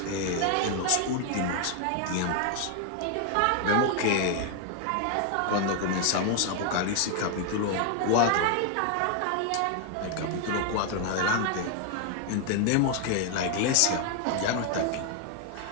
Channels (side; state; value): both; different; correlation 0.00